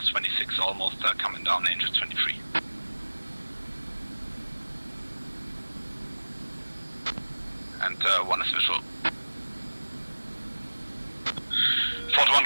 almost coming down Angel 23. And one is visual. Fort 1,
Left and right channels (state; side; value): inverted; both; correlation -1.00